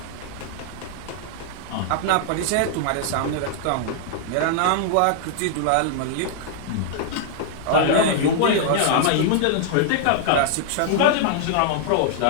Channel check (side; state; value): both; different; correlation 0.00